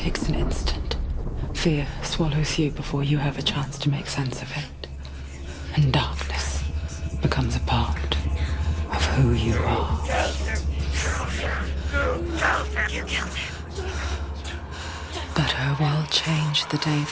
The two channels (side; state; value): both; identical; correlation 1.00